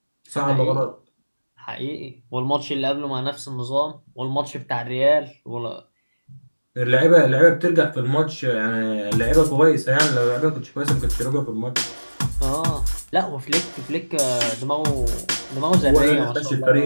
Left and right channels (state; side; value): inverted; both; correlation -1.00